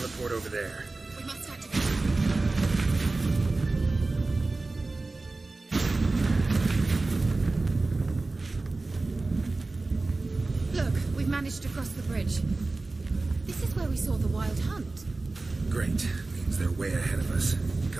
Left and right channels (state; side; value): quieter; left; 3.4 dB